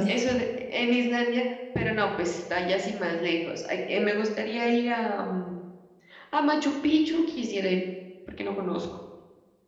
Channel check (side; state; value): both; identical; correlation 1.00